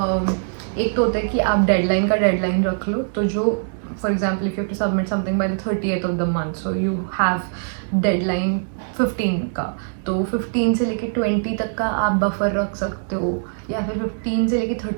एक तो होता है कि आप डेडलाइन का डेडलाइन रख लो. तो जो for example if you have to submit something by the 30th of the month, so you have deadline 15 का, तो 15 से लेके 20 तक का आप बफर रख सकते हो, या फिर 15 से लेके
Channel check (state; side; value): silent; left; digital silence